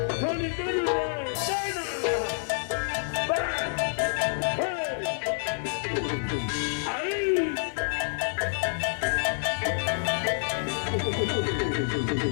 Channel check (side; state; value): right; silent; digital silence